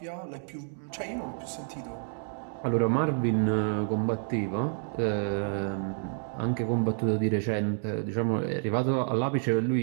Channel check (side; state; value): left; silent; 58 dB below the other